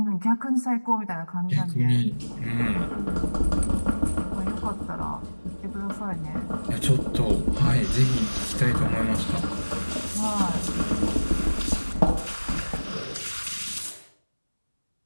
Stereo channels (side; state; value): both; inverted; correlation -1.00